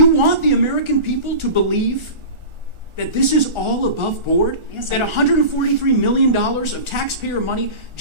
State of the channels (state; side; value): late; left; 1.4 ms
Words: want the American people to believe that this is all above board? Yes, that I- $143 million of taxpayer money